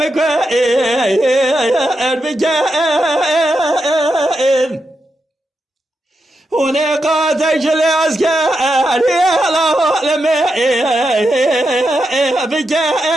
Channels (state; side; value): normal; both; correlation 0.86